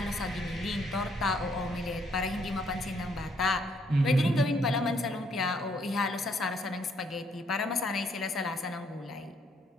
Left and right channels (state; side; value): normal; both; correlation 0.69